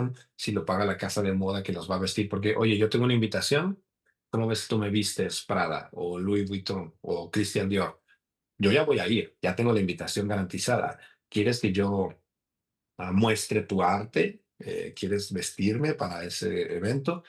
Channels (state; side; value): identical; both; correlation 1.00